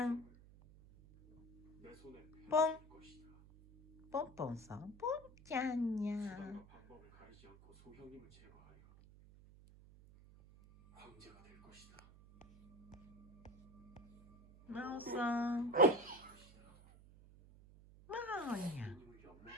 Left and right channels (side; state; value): right; noise; hum, 22 dB below the sound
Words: ん。ポン。ポンポンさん。ポンちゃんにゃ。まおさん。まおにゃ。